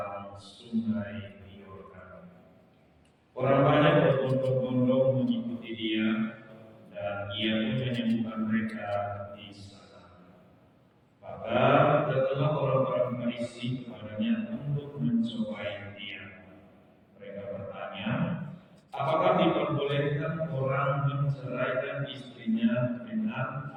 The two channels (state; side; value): identical; both; correlation 1.00